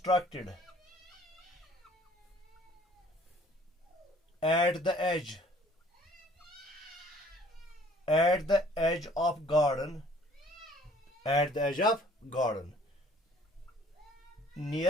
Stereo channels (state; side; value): normal; both; correlation 0.56